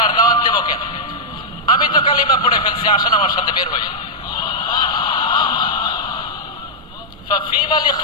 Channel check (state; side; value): normal; both; correlation -0.07